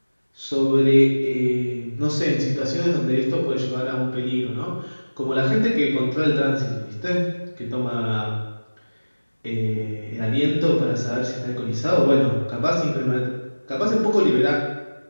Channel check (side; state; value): both; inverted; correlation -1.00